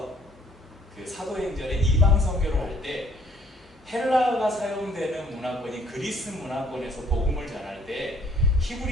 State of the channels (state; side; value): normal; both; correlation 0.61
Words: 그 사도행전에 이방 선교를 할 때 헬라어가 사용되는 문화권이 그리스 문화권에서 복음을 전할 때